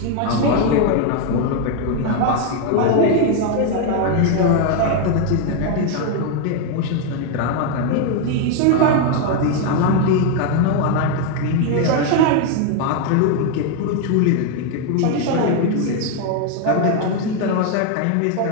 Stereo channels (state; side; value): different; both; correlation 0.01